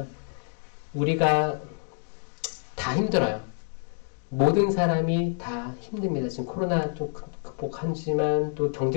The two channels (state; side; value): silent; right; 60 dB below the other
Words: 우리가 다 힘들어요. 모든 사람이 다 힘듭니다. 지금 코로나 좀 극복하지만 또